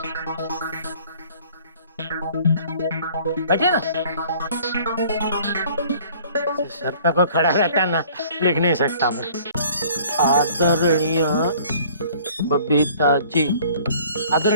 बैठे ना, सर पे कोई खड़ा रहता ना, लिख नहीं सकता मैं। आदरणीय बबीता जी,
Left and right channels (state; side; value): inverted; both; correlation -0.53